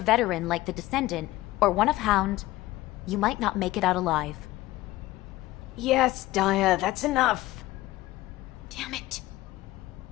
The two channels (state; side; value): quieter; right; 17.3 dB